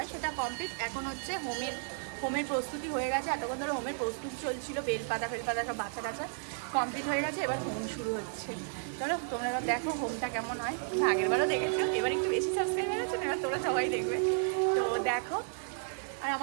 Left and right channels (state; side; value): silent; left; 56 dB below the other